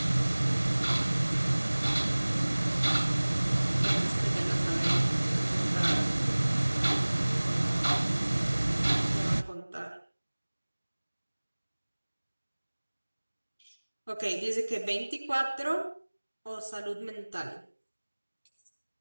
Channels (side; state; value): both; inverted; correlation -1.00